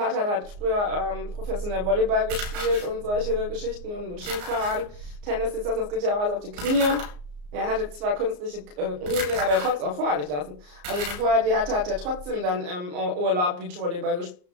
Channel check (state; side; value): late; left; 34 ms